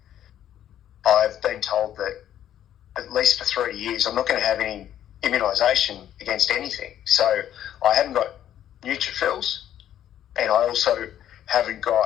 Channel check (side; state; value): right; quieter; 11.0 dB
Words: I've been told that at least for 3 years I'm not going to have any immunisation against anything. So I haven't got neutrophils, and I also haven't